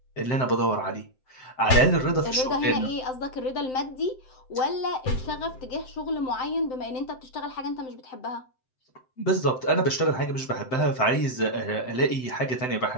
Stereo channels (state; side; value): late; right; 7.8 ms